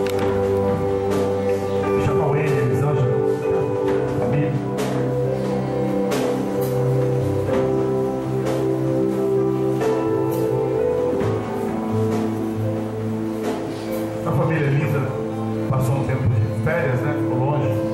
Chama o Ele, Elisângela, família. A família linda passou um tempo de férias, né? Ficou longe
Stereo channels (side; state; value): both; identical; correlation 1.00